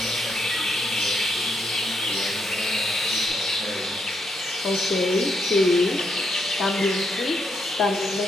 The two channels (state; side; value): normal; both; correlation 0.79